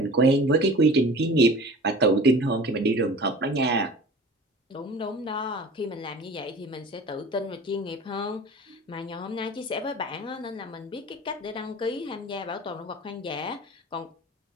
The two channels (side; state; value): both; normal; correlation 0.41